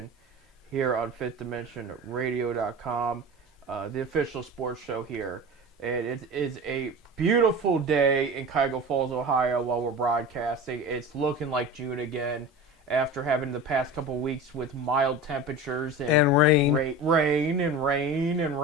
here on FifthDimensionRadio.com, the official sports show here. And it is a beautiful day in Cuyahoga Falls, Ohio while we're broadcasting. It's looking like June again after having the past couple weeks with mild temperatures And rain. Rain and rain and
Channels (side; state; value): both; normal; correlation 0.32